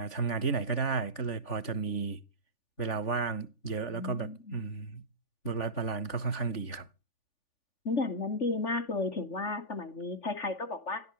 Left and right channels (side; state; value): right; late; 3.5 ms